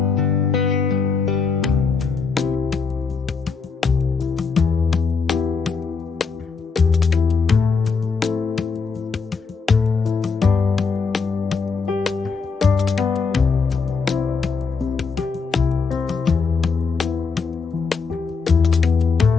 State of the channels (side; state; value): right; quieter; 5.0 dB